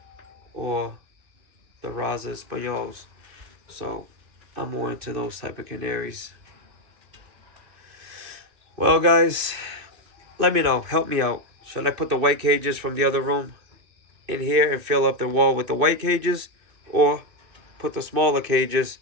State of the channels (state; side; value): late; left; 2.5 ms